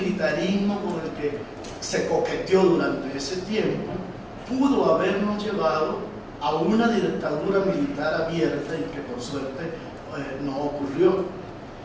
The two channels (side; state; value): both; identical; correlation 1.00